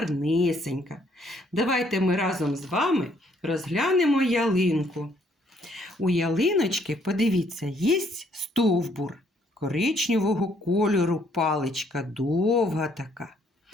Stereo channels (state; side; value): normal; both; correlation 0.67